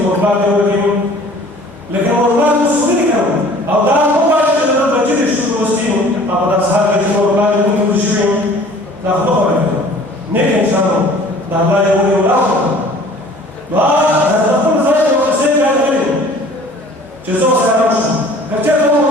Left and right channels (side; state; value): both; normal; correlation 0.49